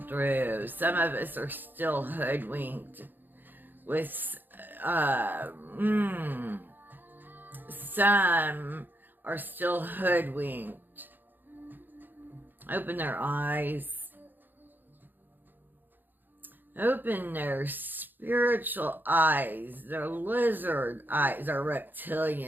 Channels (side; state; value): left; late; 0.091 ms